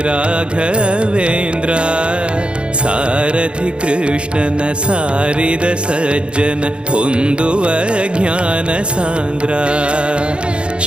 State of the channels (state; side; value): late; left; 0.056 ms